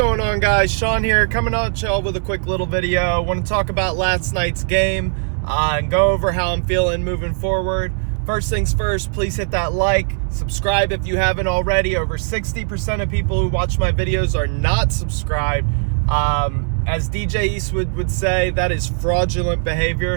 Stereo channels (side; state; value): left; silent; digital silence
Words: on, guys? Sean here, coming at y'all with a quick little video. I want to talk about last night's game and go over how I'm feeling moving forward. First things first, please hit that like, subscribe if you haven't already. Over 60% of people who watch my videos are not subscribed. As DJ Eastwood would say, that is fraudulent